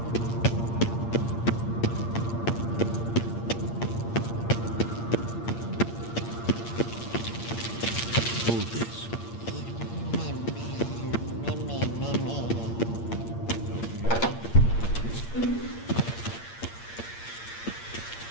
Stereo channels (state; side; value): late; right; 8.7 ms